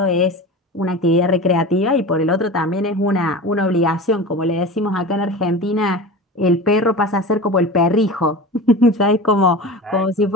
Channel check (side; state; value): both; normal; correlation 0.31